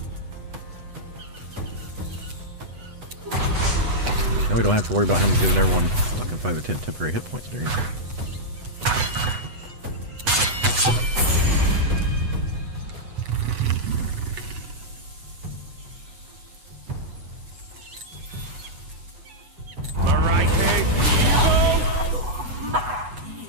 Now we don't have to worry about him giving everyone fucking 5 or 10 temporary hit points during.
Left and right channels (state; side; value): late; left; 8.1 ms